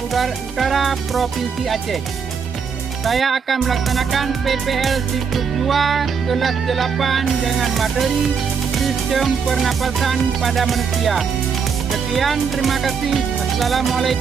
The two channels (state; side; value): quieter; left; 6.1 dB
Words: Provinsi Aceh. Saya akan melaksanakan PPL siklus 2 kelas 8 dengan materi sistem pernapasan pada manusia. Sekian, terima kasih.